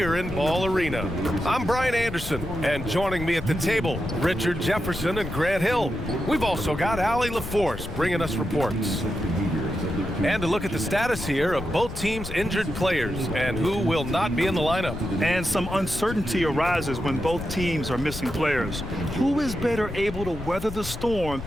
in Ball Arena. I'm Brian Anderson, and joining me at the table, Richard Jefferson and Grant Hill. We've also got Allie LaForce bringing us reports. And to look at the status here of both teams' injured players and who will not be in the lineup. And some uncertainty arises when both teams are missing players. Who is better able to weather the storm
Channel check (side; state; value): left; noise; rumble, 10 dB below the sound